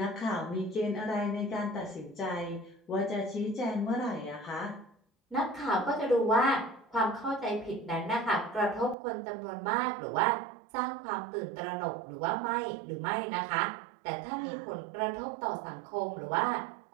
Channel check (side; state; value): left; drops out; at 9.0 s